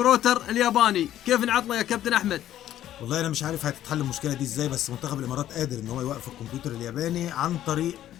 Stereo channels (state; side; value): quieter; right; 12.3 dB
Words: الياباني. كيف نعطله يا كابتن أحمد؟ والله انا مش عارف هتتحل المشكله دي ازاي، بس منتخب الامارات قادر ان هو يوقف الكمبيوتر الياباني عن طريق